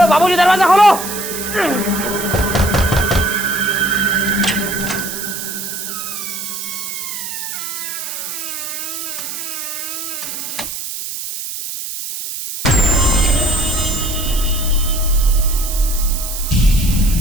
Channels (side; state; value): right; noise; hiss, 6 dB below the sound